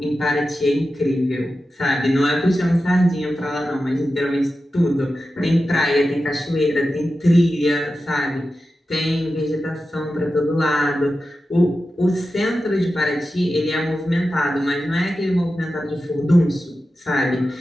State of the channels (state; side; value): normal; both; correlation 0.92